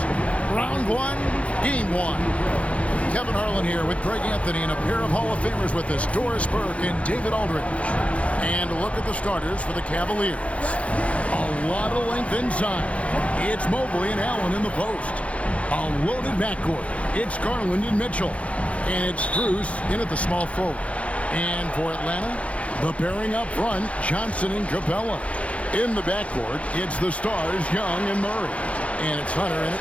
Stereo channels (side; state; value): right; late; 0.064 ms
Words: Round 1, Game 1. Kevin Harlan here with Greg Anthony and a pair of Hall of Famers with us, Doris Burke and David Aldridge. And look at the starters for the Cavaliers. A lot of length inside. It's Mobley and Allen in the post. A loaded backcourt. It's Garland and Mitchell. And it's Strus in at the small forward. And for Atlanta, the pairing up front, Johnson and Capella. In the backcourt, it's the stars, Young and Murray. And it's Hunter in at